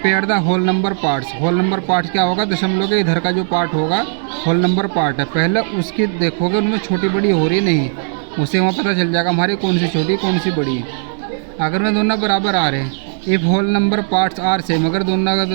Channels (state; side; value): silent; left; digital silence